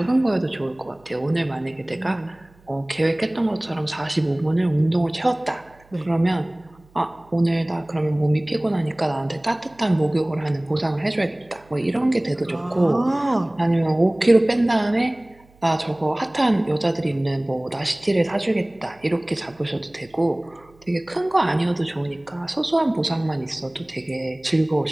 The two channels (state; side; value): noise; right; hum, 29 dB below the sound